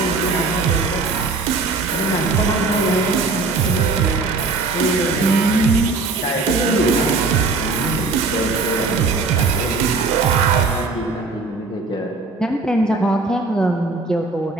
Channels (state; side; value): quieter; left; 3.8 dB